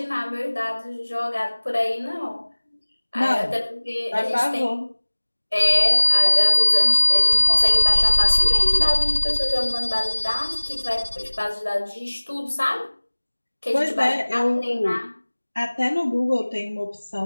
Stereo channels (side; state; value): both; inverted; correlation -1.00